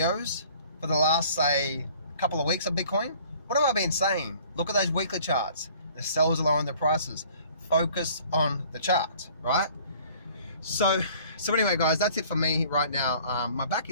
for the last, say, couple of weeks of Bitcoin, what have I been saying? Look at those weekly charts. The sellers are lowering their prices. Focus on the charts, right? So So anyway, guys, that's it for me right now. My back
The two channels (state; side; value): inverted; both; correlation -0.53